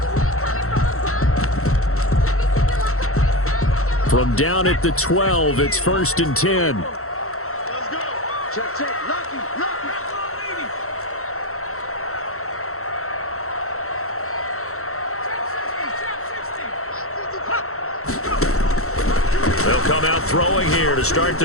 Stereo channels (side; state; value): right; late; 0.63 ms